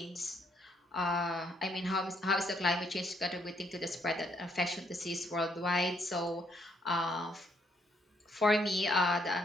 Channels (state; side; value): normal; both; correlation 0.72